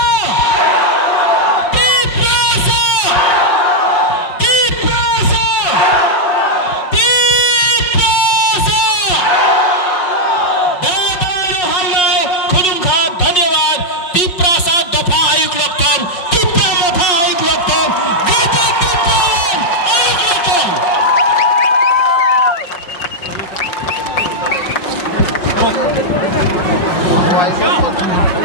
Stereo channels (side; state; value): right; late; 5.6 ms